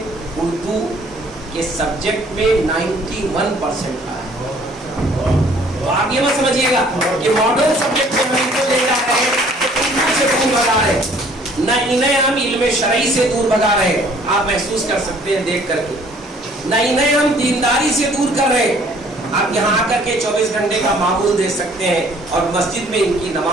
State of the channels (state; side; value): normal; both; correlation 0.57